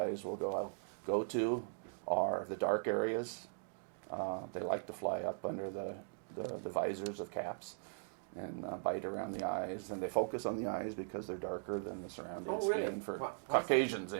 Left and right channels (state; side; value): silent; left; digital silence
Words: will go to are the dark areas. They like to fly up under the visors of caps and bite around the eyes, and they focus on the eyes because they're darker than the surrounding skin for Caucasians